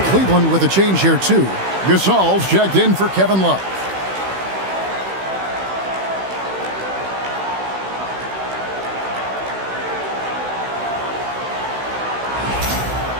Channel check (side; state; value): left; late; 16 ms